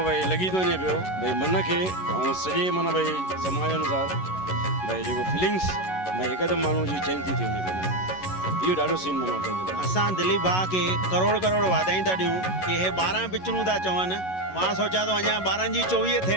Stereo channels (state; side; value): late; right; 11 ms